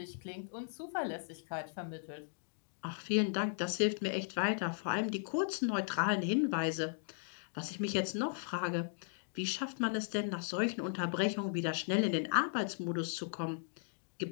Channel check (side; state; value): right; silent; digital silence